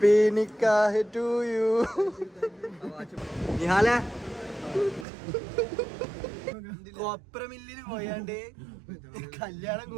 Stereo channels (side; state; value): left; drops out; at 5.1 s